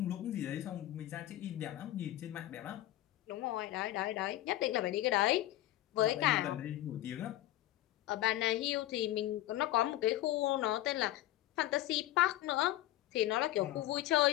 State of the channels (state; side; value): quieter; right; 15.0 dB